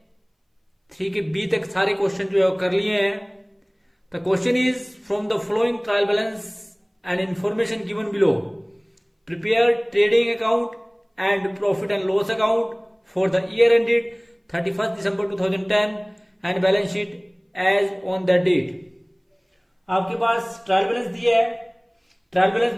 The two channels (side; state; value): both; identical; correlation 1.00